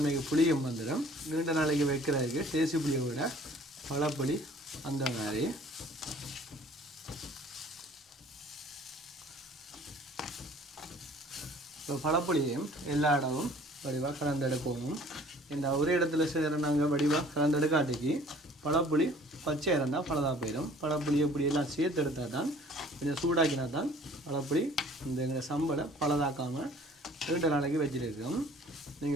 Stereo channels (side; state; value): both; normal; correlation 0.53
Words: புளியும் வந்துடும். நீண்ட நாளைக்கு வைக்கிறதுக்கு தேசி புளியை விட பழப்புளி அந்த மாதிரி. இப்போ பழப்புளியையும் எல்லா இடமும் வடிவாக கலந்தெடுக்கவும். இந்த ஒரு இடத்துல செய்கிற நாங்கள் வடிவாக கலந்தெடுக்காட்டிக்கு பழப்புளி பச்சை இருந்தால் பழதாக போயிடும். பழப்புளி இப்படி எல்லாம் சேர்த்து எடுத்தால் தான் கொஞ்சம் சூடாக்கினா தான் பழப்புளி இந்த எங்களை சம்பளை பழதாக்காமல் 2 நாளைக்கு வச்சுருக்கோம்.